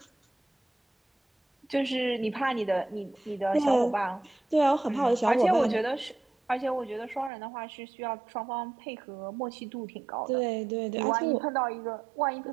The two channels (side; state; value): left; drops out; at 7.3 s